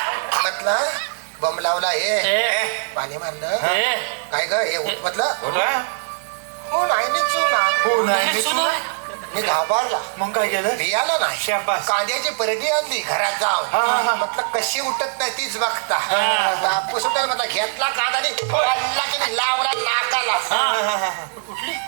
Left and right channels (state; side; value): silent; left; 57 dB below the other